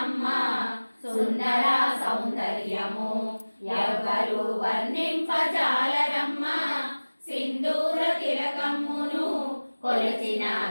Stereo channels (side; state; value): both; inverted; correlation -1.00